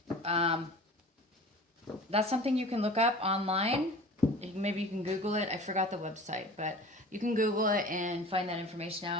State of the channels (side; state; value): both; normal; correlation 0.40